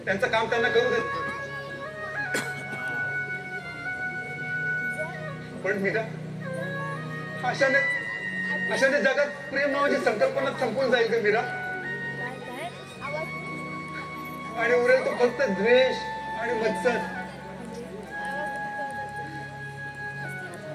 त्यांचं काम त्यांना करू दे. पण मीरा, अशाने जगात प्रेम नावाची संकल्पना संपून जाईल का मीरा? आणि उरेल तो फक्त द्वेष आणि मत्सर.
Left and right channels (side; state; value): both; identical; correlation 1.00